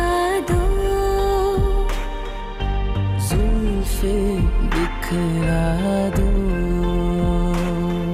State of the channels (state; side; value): identical; both; correlation 1.00